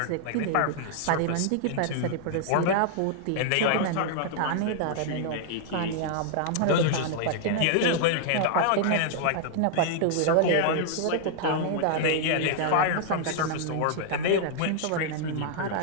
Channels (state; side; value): different; both; correlation -0.01